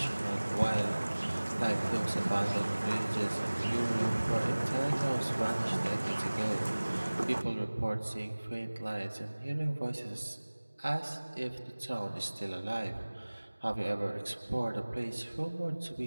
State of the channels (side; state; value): both; inverted; correlation -1.00